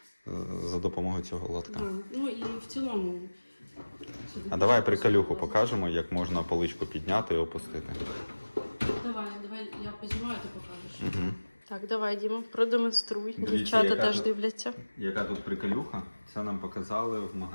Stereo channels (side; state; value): both; inverted; correlation -1.00